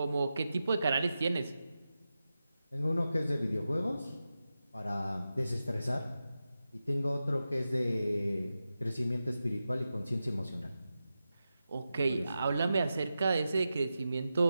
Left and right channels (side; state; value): both; inverted; correlation -0.91